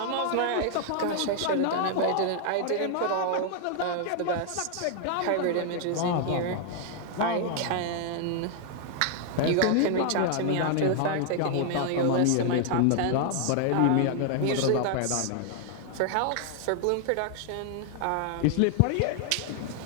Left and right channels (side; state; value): both; different; correlation 0.00